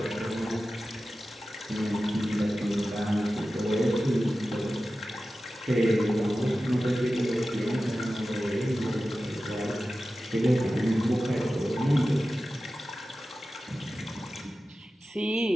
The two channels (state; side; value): normal; both; correlation 0.94